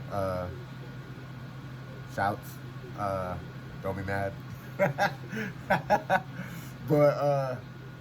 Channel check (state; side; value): identical; both; correlation 1.00